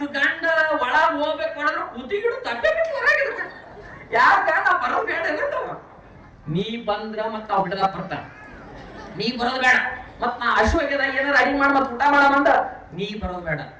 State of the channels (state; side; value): identical; both; correlation 1.00